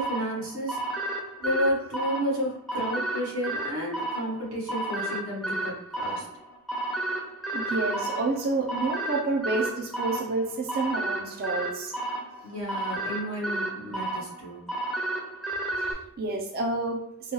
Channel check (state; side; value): normal; both; correlation 0.22